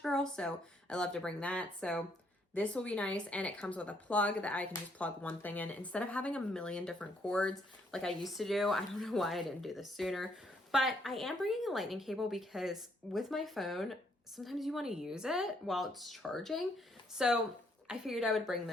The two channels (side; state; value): both; normal; correlation 0.71